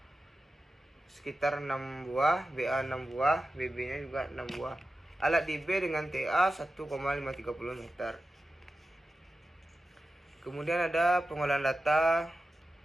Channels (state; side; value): normal; both; correlation 0.93